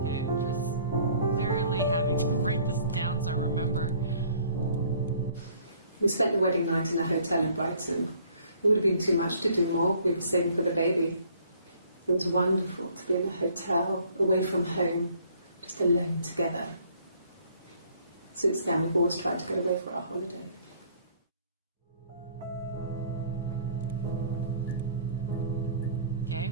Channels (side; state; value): both; inverted; correlation -0.58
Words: Okay, just literally having to write this down so I remember. We spent the wedding night in a hotel in Brighton. It would have been too much to do more. We were saving for the baby. It was wonderful to be in a hotel, away from home, just alone together. Since then, we've always tried to get away for our holiday. Okay,